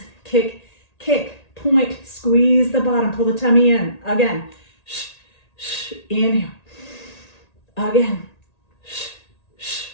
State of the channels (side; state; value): right; late; 1.8 ms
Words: kick, kick, point, squeeze the bottom, pull the tummy in. Again, inhale. Again,